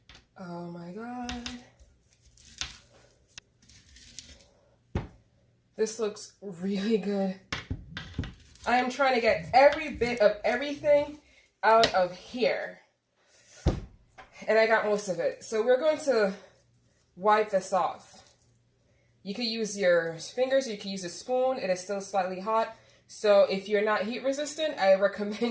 Oh my God. This looks really good. I am trying to get every bit of everything out of here. And I got most of it. So we're going to wipe this off. You could use your fingers, or you could use a spoon. It is still slightly hot. So if you're not heat resistant, I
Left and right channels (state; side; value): identical; both; correlation 1.00